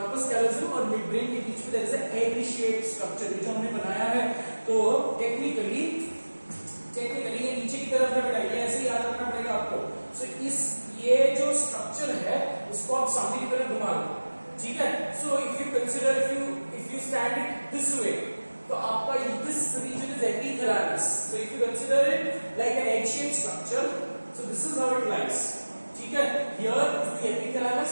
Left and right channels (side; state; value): both; inverted; correlation -1.00